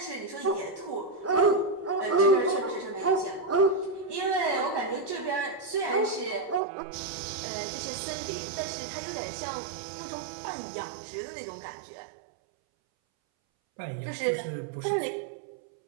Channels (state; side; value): drops out; left; at 6.6 s